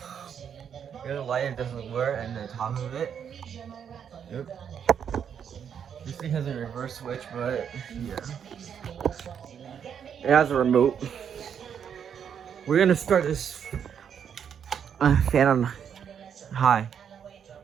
light. It doesn't work, and the top of it. Yep. This thing has a reverse switch, but yeah, it has a remote. We're gonna start this fan on high.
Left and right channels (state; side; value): quieter; left; 8.0 dB